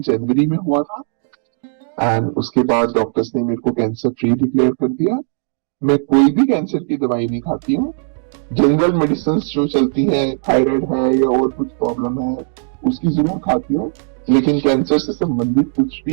जनवरी में हुआ था एंड उसके बाद डॉक्टर्स ने मेरे को कैंसर फ्री डिक्लेयर कर दिया। मैं कोई भी कैंसर की दवाई नहीं खाती हूँ। जनरल मेडिसिन जो चलती हैं, थायराइड है या और कुछ प्रॉब्लम है, उसकी जरूर खाती हूँ, लेकिन कैंसर से संबंधित कुछ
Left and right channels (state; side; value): silent; left; digital silence